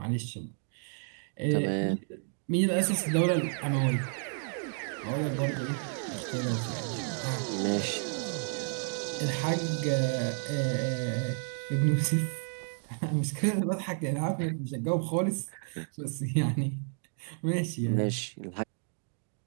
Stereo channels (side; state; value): left; silent; 57 dB below the other